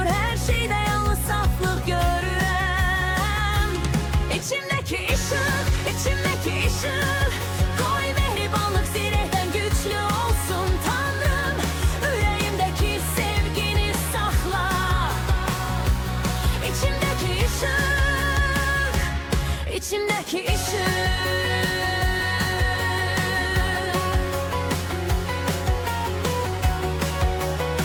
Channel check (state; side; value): identical; both; correlation 1.00